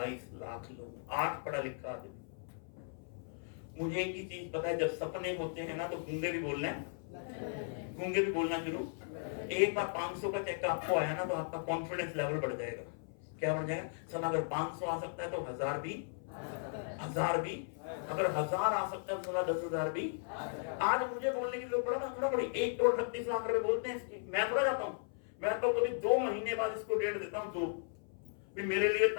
लाख लोग, 8 पढ़ा लिखा आदमी। मुझे एक ही चीज पता है, जब सपने होते हैं ना तो गूंगे भी बोलना है, गूंगे भी बोलना शुरू। एक बार 500 का चेक आपको आया ना तो आपका कॉन्फिडेंस लेवल बढ़ जाएगा। क्या बढ़ जाएगा? सर अगर 500 आ सकता है तो 1000 भी, 1000 भी, अगर 1000 आ सकता है तो 10,000 भी। आज मुझे बोलने की जरूरत पड़ा ना, थोड़ा बड़ी 1 करोड़ 38 लाख रुपए बोलते हैं इसकी। मैं थोड़ा जाता हूँ, मैं तो कभी 2 महीने बाद इसको डेट देता हूँ, 2 भी मेरे लिए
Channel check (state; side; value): silent; right; 53 dB below the other